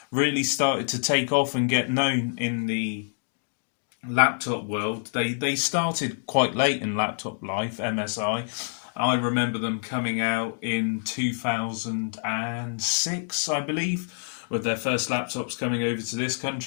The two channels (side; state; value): right; silent; 60 dB below the other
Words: really started to take off and get known in the laptop world. They started quite late in laptop life, MSI. I remember them coming out in 2006, I believe, with their first laptops coming over to this